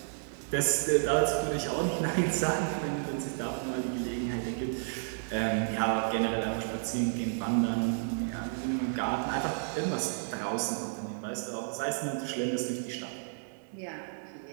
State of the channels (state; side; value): silent; left; 57 dB below the other